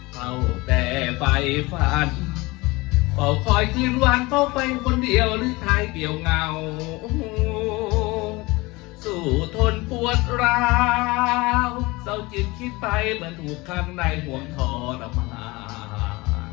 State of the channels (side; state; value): right; quieter; 22.8 dB